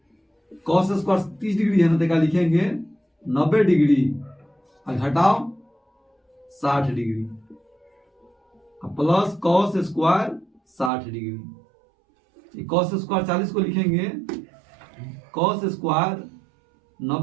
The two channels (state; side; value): drops out; left; at 10.9 s